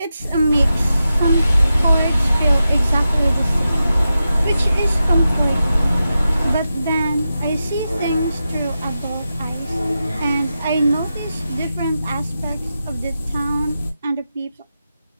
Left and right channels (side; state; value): both; inverted; correlation -0.90